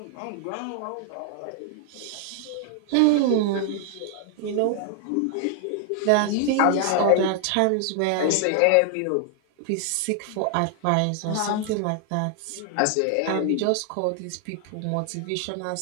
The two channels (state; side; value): different; both; correlation 0.00